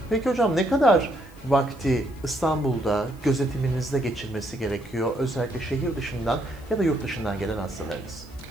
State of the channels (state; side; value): noise; left; hiss, 27 dB below the sound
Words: Peki hocam, ne kadar vakti İstanbul'da gözetiminizde geçirmesi gerekiyor, özellikle şehir dışından ya da yurt dışından gelen hastalarınız?